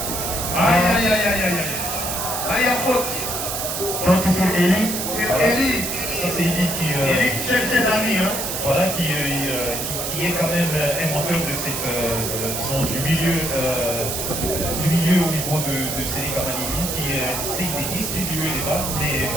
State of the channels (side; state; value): right; noise; hiss, 3 dB below the sound